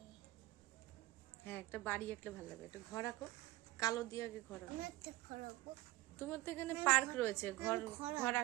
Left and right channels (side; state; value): left; quieter; 17.5 dB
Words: হ্যাঁ, একটা বাড়ি আঁকলে ভালো লাগবে। একটা ঘর আঁকো, কালো দিয়ে আগে ঘর আঁকো। আমি একটা ঘর আঁকবো। তোমার তো এখানে পার্ক রয়েছে, ঘর ঘর